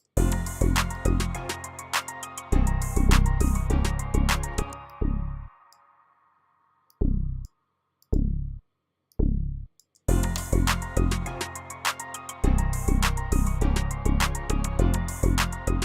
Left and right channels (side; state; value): both; identical; correlation 1.00